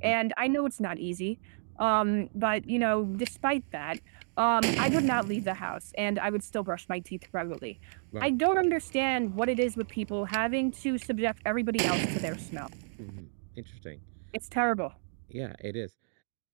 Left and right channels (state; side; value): silent; left; digital silence